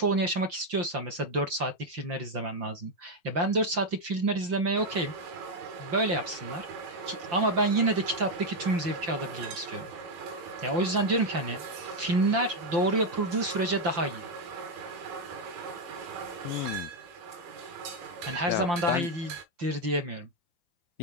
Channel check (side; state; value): left; late; 5.7 ms